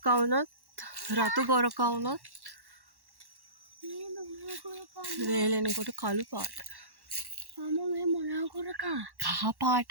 වුණත් රතු ගොරකා වුණත් මේ මොනවා කරකා? වේලෙනකොට කළු පාට. අම්මා මේ මොනවා කරකා? කහ පාට.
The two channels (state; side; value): late; left; 1.1 ms